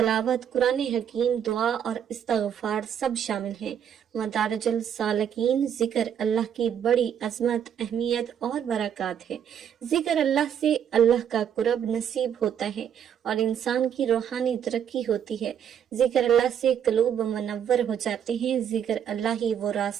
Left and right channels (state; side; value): quieter; left; 8.8 dB